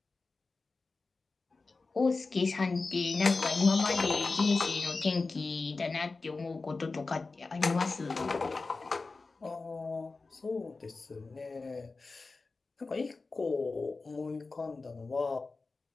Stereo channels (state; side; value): quieter; right; 3.8 dB